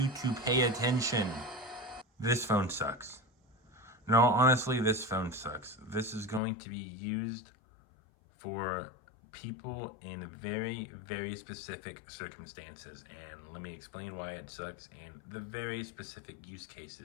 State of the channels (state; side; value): drops out; right; at 6.4 s